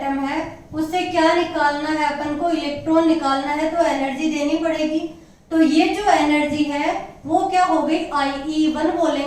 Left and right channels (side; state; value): both; identical; correlation 1.00